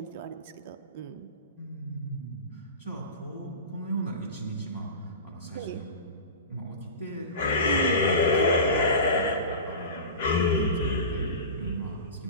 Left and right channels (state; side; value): inverted; both; correlation -0.30